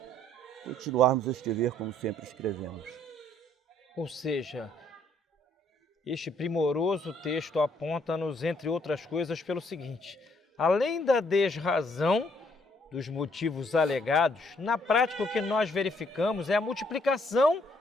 continuarmos a escrever como sempre escrevemos. Ou seja, este primoroso texto aponta-nos, entre outras coisas, pelo seguinte: além da desrazão dos motivos alegados, na prática o que nós verificamos é a multiplicação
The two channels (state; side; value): normal; both; correlation 0.67